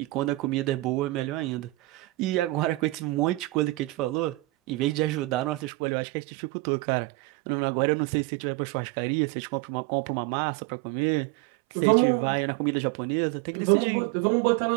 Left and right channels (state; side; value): drops out; left; at 5.7 s